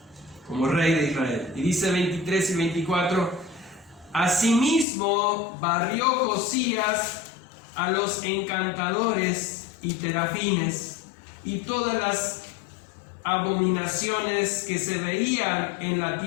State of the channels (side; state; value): right; drops out; at 4.9 s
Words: como rey de Israel. Y dice 23 y 24, asimismo barrió Josías a los encantadores y terafines y todas las abominaciones que se veían en la